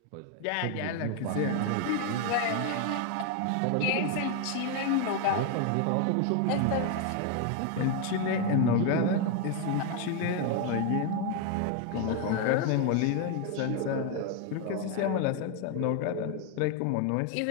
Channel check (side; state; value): both; different; correlation 0.01